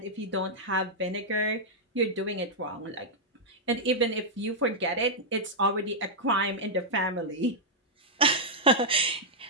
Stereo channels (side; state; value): both; normal; correlation -0.07